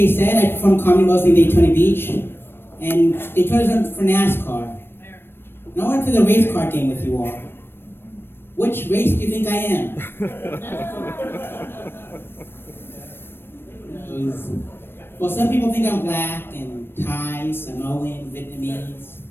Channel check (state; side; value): late; right; 0.10 ms